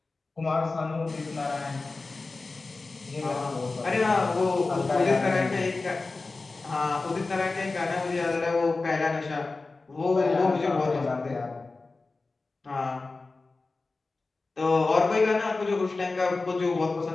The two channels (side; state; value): right; quieter; 3.6 dB